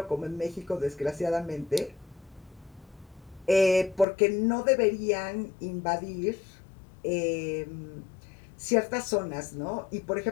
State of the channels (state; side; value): drops out; right; at 4.0 s